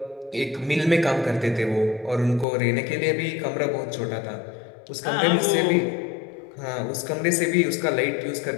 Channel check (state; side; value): drops out; right; at 2.5 s